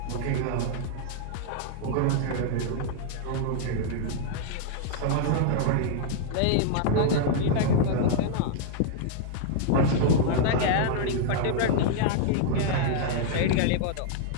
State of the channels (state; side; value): different; both; correlation -0.01